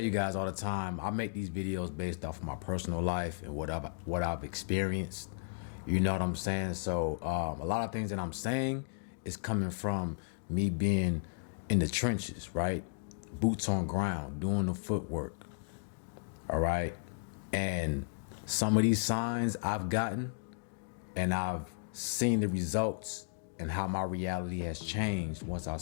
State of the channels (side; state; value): right; silent; digital silence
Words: you guys all the time, I make these videos based off of my personal life and what I've experienced. You know what I'm saying? So a lot of things that I'm saying is coming from me being in the trenches, right? Boots on ground, doing the footwork. All right. And some of these signs I've gotten, and I've seen the results and how my reality has changed once I